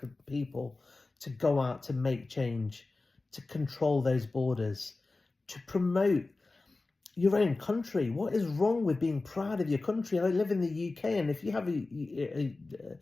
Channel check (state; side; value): quieter; right; 3.4 dB